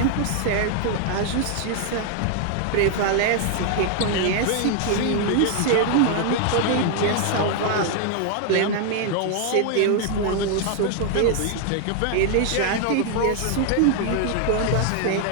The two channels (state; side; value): different; both; correlation 0.00